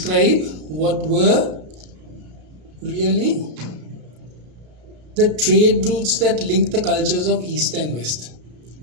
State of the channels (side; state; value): left; late; 33 ms